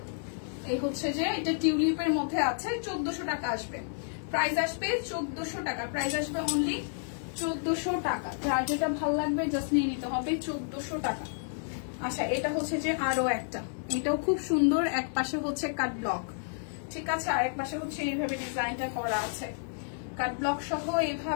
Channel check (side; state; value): right; silent; 57 dB below the other